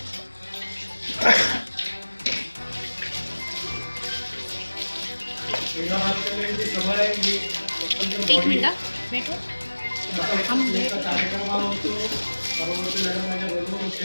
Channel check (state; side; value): inverted; both; correlation -1.00